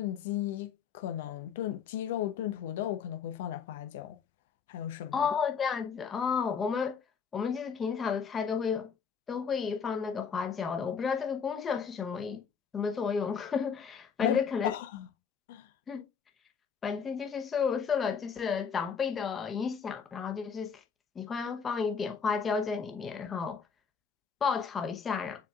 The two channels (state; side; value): quieter; right; 6.4 dB